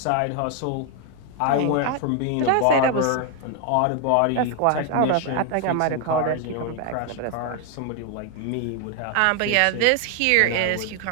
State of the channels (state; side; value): different; both; correlation 0.00